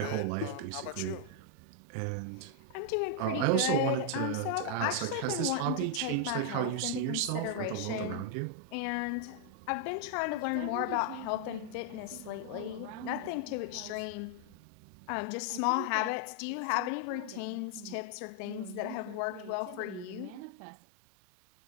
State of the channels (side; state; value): both; different; correlation 0.00